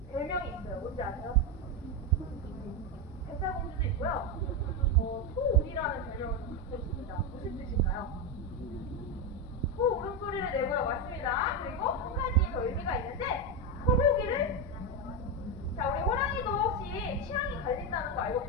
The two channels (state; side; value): normal; both; correlation 0.10